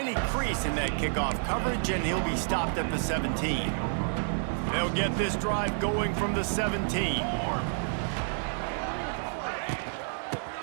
crease in that kickoff coverage, and he'll be stopped at the 17. They'll get this drive going from the 17.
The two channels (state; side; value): silent; left; digital silence